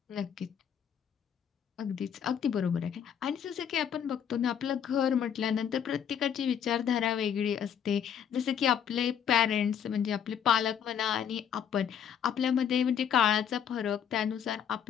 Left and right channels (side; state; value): right; quieter; 8.5 dB